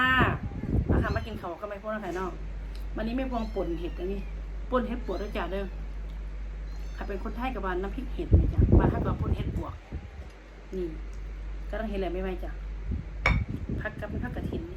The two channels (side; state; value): both; identical; correlation 1.00